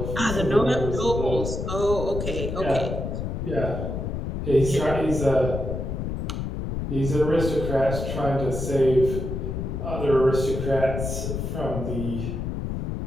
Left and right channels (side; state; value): left; noise; rumble, 3 dB below the sound